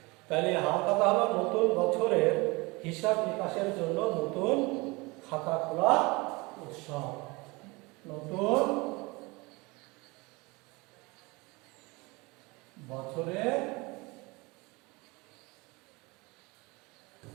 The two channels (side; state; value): left; quieter; 25.1 dB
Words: তাহলে হাল খাতা হলো নতুন বছরের হিসাব নিকাশের জন্য নতুন খাতা খোলা উৎসব। নতুন বছরের